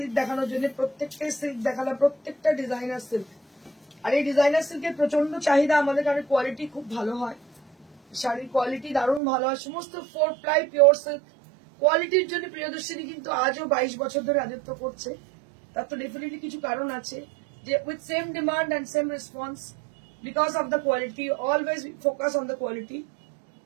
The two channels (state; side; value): drops out; left; at 9.2 s